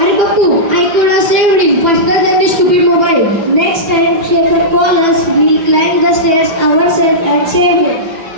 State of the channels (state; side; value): late; left; 5.9 ms